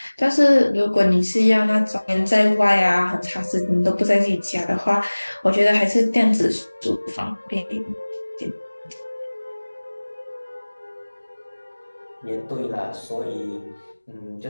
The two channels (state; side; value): inverted; both; correlation -1.00